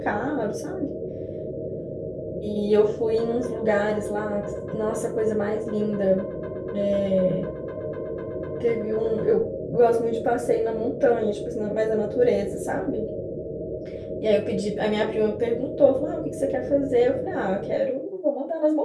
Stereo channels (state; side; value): identical; both; correlation 1.00